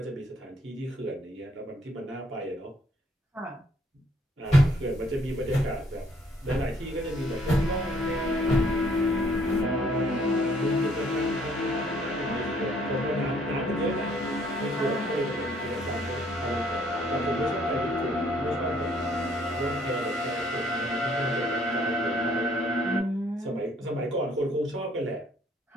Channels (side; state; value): both; normal; correlation 0.64